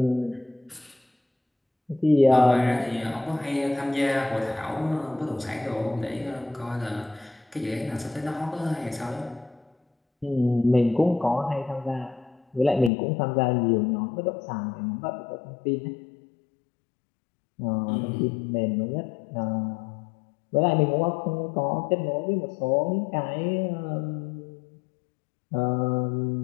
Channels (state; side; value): drops out; right; at 12.9 s